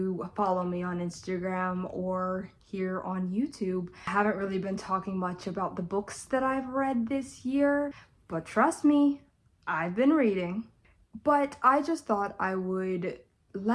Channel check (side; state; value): both; identical; correlation 1.00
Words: follow me on Instagram or here on YouTube, I haven't really been talking much about the books that I've read this year, but trust me, I've been reading. But I just thought I would